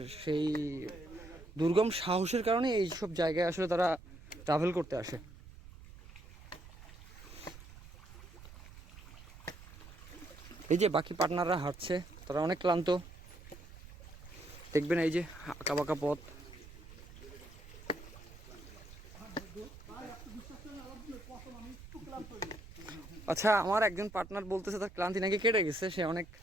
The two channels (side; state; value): right; noise; rumble, 17 dB below the sound